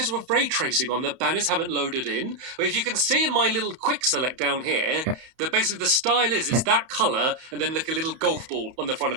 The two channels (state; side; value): late; left; 31 ms